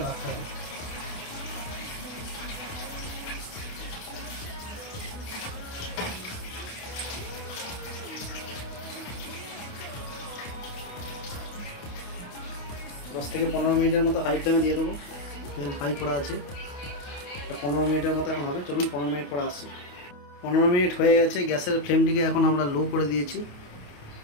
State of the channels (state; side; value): late; right; 28 ms